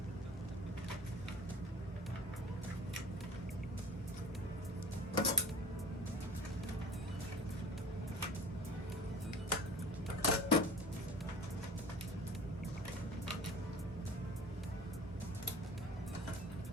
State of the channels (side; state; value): both; normal; correlation 0.40